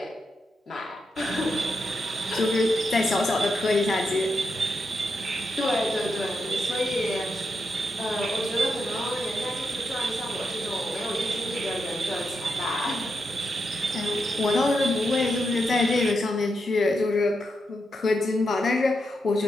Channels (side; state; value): both; normal; correlation 0.85